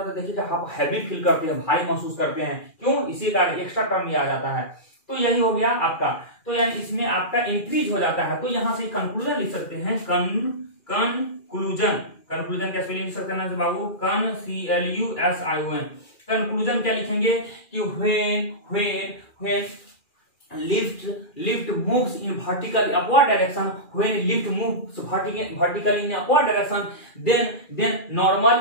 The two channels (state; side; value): late; right; 2.4 ms